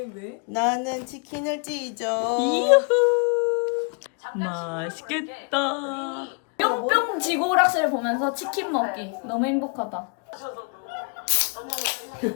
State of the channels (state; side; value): quieter; right; 37.3 dB